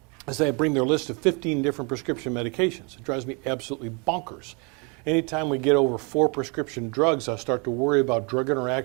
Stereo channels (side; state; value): left; quieter; 32.5 dB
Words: is they bring their list of 15 different prescription medications. It drives me absolutely bonkers. Anytime we get over 4 prescription drugs, I start to worry about drug